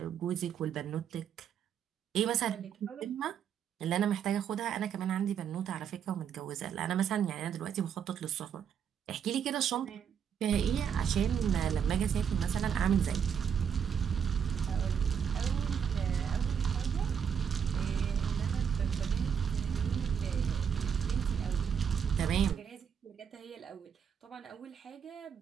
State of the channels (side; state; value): left; quieter; 7.7 dB